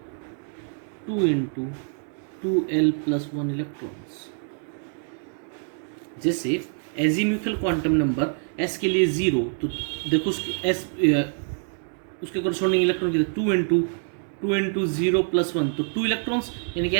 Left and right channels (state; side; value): silent; left; 58 dB below the other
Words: 2 into 2l plus 1 electrons. जैसे एजीम्यूथल क्वांटम नंबर s के लिए 0, तो देखो उसके कोरस्पॉन्डिंग इलेक्ट्रॉन कितने, 2 इंटू 0 प्लस 1, तो 2 इलेक्ट्रॉन्स, यानी कि